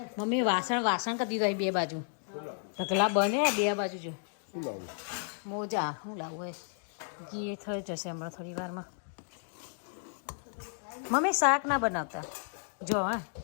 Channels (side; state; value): right; silent; digital silence